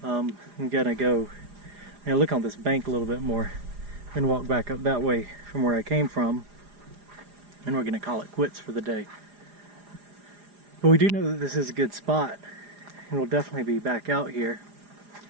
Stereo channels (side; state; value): left; late; 4.9 ms